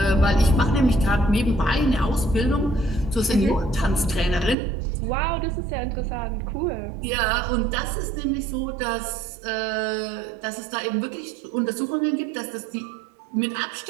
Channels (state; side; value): drops out; left; at 4.5 s